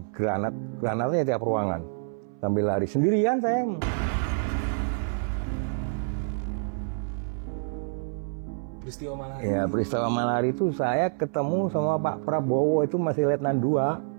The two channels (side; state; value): left; silent; 60 dB below the other